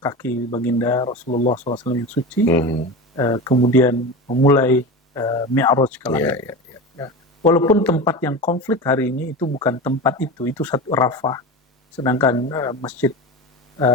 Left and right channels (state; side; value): normal; both; correlation 0.27